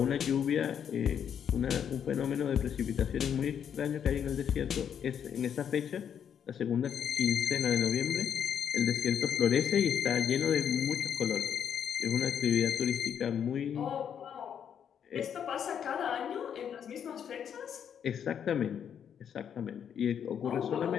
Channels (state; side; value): quieter; right; 8.4 dB